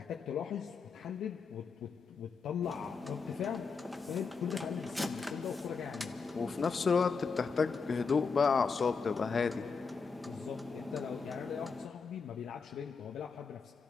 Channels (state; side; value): quieter; right; 5.1 dB